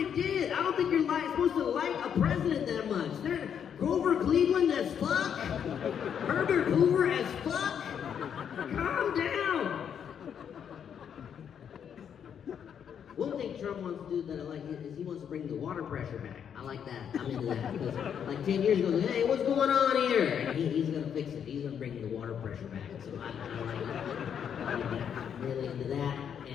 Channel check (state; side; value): quieter; right; 8.2 dB